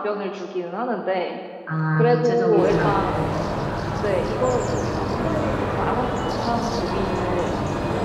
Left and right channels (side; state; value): both; identical; correlation 1.00